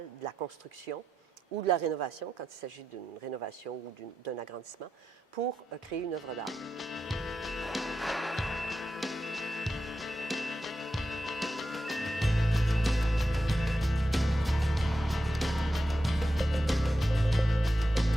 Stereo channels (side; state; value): both; normal; correlation 0.88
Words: de la construction ou de la rénovation, quand il s'agit d'une rénovation ou d'un agrandissement, pour créer une œuvre d'art.